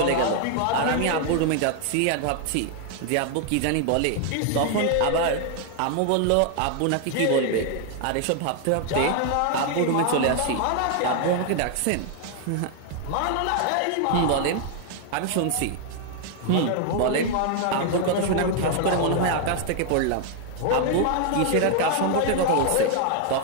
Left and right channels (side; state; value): both; different; correlation 0.00